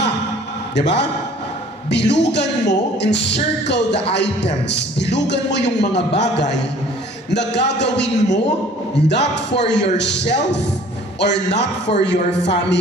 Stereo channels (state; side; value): normal; both; correlation 0.52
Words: Diba? Bilugan mo, encircle the items. Bilugan mo yung mga bagay na gagawin mo not for yourself or not for your